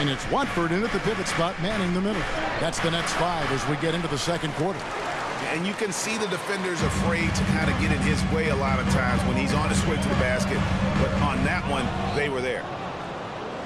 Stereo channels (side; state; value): both; identical; correlation 1.00